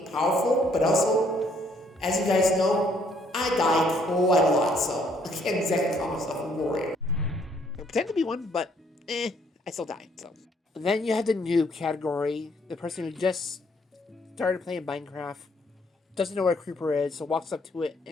powerful, but also, as you guys know, I die quite a lot, so I can't exactly call myself a warrior. I pretend to be one, but I still die, so. Then you have the noob category, the person who just started playing Minecraft, doesn't know where a creeper is, so walks up to it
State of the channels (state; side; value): normal; both; correlation 0.67